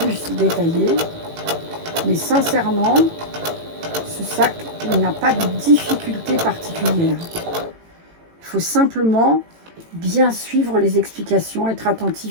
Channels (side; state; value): left; late; 18 ms